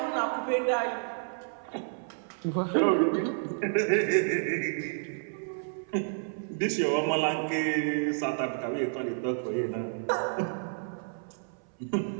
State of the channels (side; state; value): left; silent; 58 dB below the other